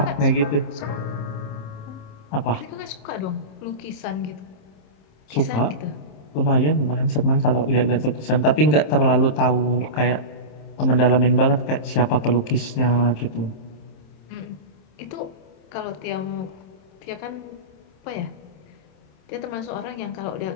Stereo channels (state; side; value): late; right; 27 ms